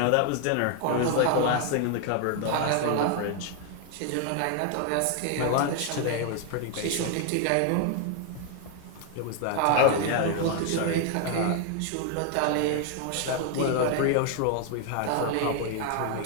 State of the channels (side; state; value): both; different; correlation 0.00